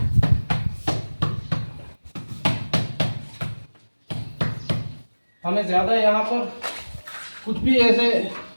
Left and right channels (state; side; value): inverted; both; correlation -1.00